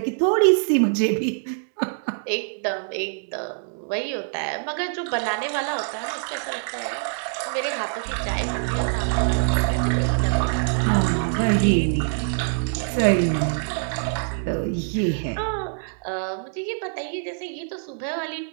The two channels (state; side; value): silent; left; digital silence